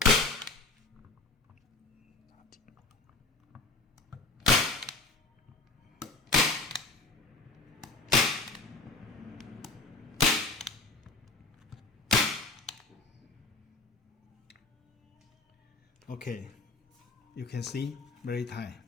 Okay, you can see very tight,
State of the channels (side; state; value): right; quieter; 3.5 dB